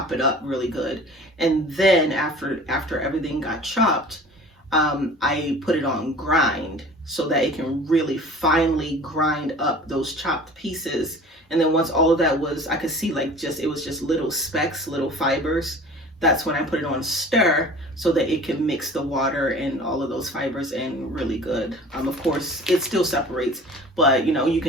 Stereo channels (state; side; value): normal; both; correlation 0.43